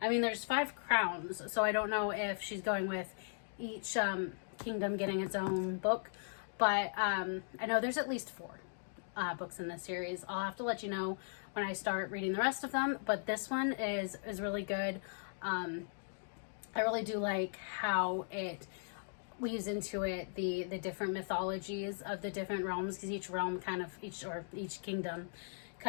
I mean, there's 5 crowns. So I don't know if she's going with each kingdom getting its own book. But I know there's at least 4 books in this series. I'll have to let you know when I start reading the rest of them, but this one is really good. I really do like how it weaves into it the different mythologies of the different realms, because each realm each kingdom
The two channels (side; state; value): right; silent; digital silence